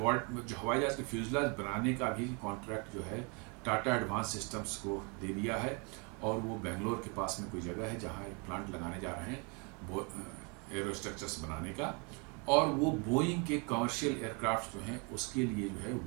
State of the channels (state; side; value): quieter; left; 33.4 dB